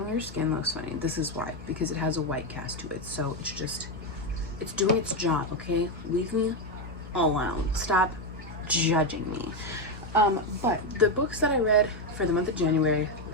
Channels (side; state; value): both; normal; correlation 0.08